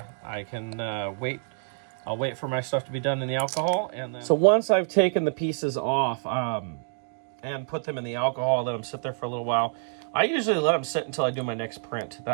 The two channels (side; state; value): left; silent; digital silence